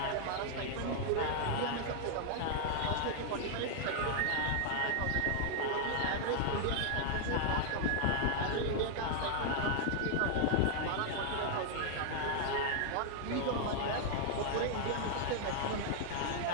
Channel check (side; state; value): both; different; correlation 0.00